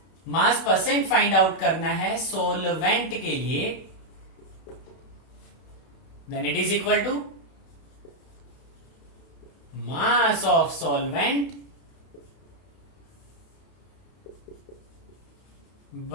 मास परसेंट फाइंड आउट करना है सोलवेंट के लिए, then it is equal to mass of solvent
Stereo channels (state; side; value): late; right; 31 ms